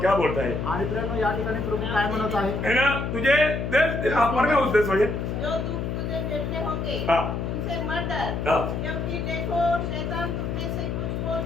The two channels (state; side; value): noise; left; hum, 2 dB below the sound